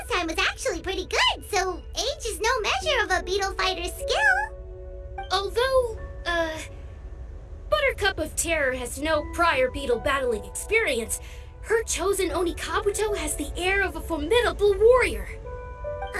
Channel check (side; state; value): both; identical; correlation 1.00